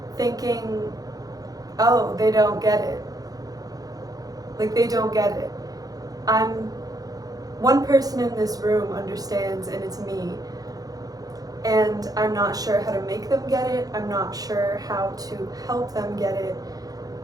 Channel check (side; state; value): left; late; 0.18 ms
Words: thinking, oh, they don't get it. Like, they don't get it. One person in this room understands, and it's me. And I'm not sure how to make them get it. I'm not sure how to help them get it.